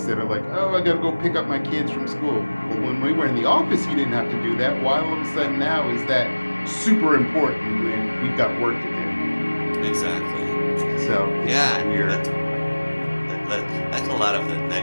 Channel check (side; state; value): both; inverted; correlation -1.00